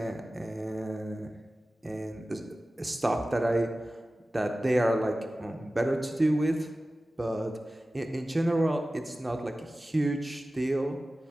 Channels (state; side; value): normal; both; correlation 0.96